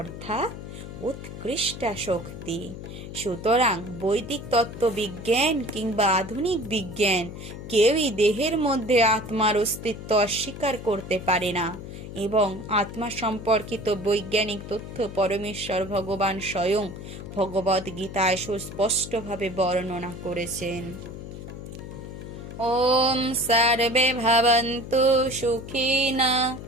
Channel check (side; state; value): left; noise; hum, 11 dB below the sound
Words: উৎকৃষ্ট শক্তি। সুতরাং বৈদিক তত্ত্ববিজ্ঞান কিংবা আধুনিক বিজ্ঞান কেউই দেহের মধ্যে আত্মার অস্তিত্ব অস্বীকার করতে পারে না এবং আত্মা সম্পর্কিত বৈজ্ঞানিক তথ্য পরমেশ্বর ভগবান স্বয়ং ভগবদ গীতায় সুস্পষ্টভাবে বর্ণনা করেছেন। ওম সর্বে ভবন্তু সুখিনা